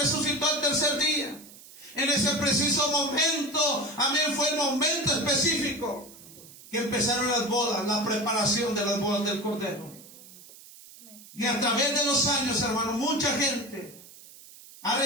al tercer día, en ese preciso momento, amén, fue el momento específico que empezaron las bodas, la preparación de las bodas del Cordero. Y a través de los años, hermano, mucha gente ha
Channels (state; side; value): noise; right; hiss, 20 dB below the sound